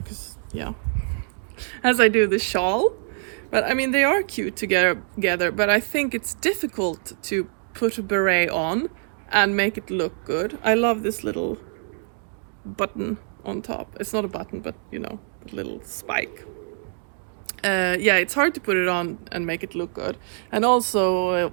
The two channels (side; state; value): left; silent; 62 dB below the other